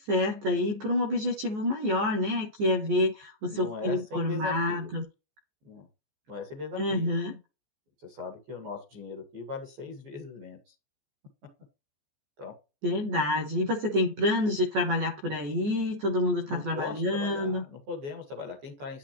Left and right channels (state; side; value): late; left; 14 ms